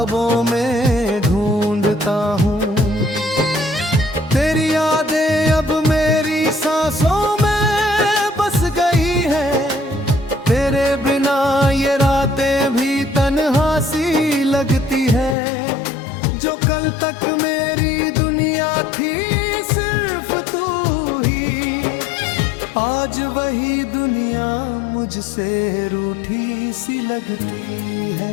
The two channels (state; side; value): drops out; right; at 15.4 s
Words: में ढूंढता हूँ। तेरी यादें अब मेरी सांसों में बस गई है, तेरे बिना ये रातें भी तन्हा सी लगती है। जो कल तक मेरी दुनिया थी सिर्फ तू ही, आज वही दुनिया मुझसे रूठी सी लगती